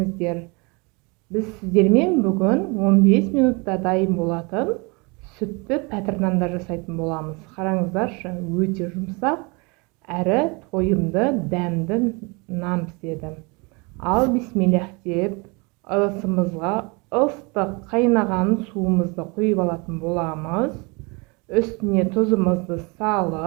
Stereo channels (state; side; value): quieter; left; 29.1 dB